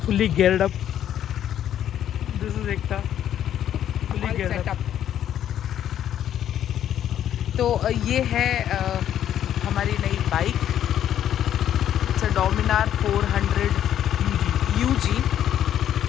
fully geared up. This is Ekta fully all geared set up. up। तो ये है हमारी नई bike. It's a Dominar 400 UG।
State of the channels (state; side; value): quieter; right; 10.7 dB